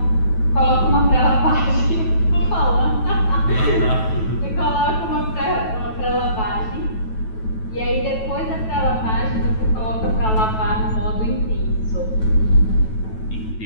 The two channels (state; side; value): late; right; 9.2 ms